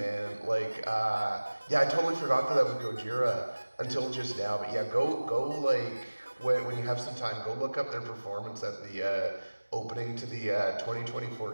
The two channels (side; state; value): both; inverted; correlation -1.00